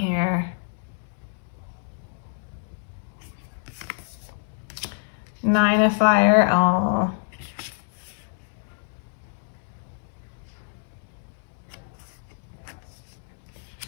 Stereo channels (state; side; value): silent; right; digital silence